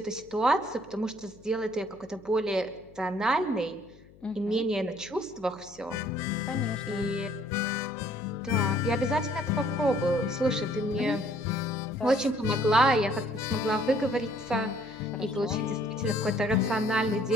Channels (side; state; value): left; noise; hum, 24 dB below the sound